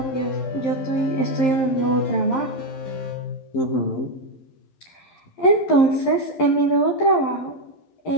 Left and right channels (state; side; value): late; right; 11 ms